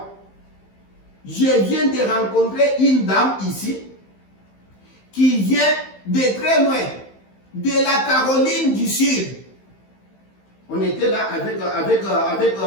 Je viens de rencontrer une dame ici qui vient de très loin, de la Caroline du Sud. On était là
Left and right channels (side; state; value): right; late; 15 ms